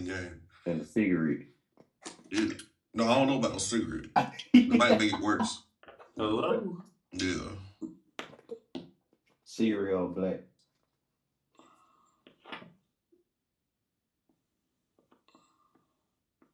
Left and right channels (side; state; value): both; identical; correlation 1.00